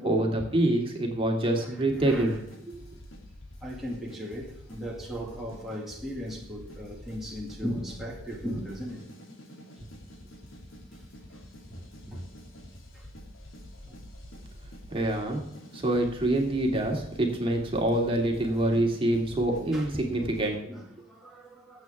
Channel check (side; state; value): both; normal; correlation 0.64